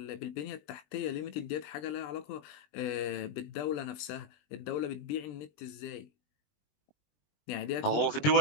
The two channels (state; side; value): late; right; 20 ms